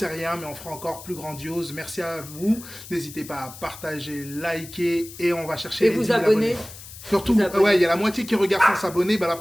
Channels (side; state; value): left; noise; hiss, 15 dB below the sound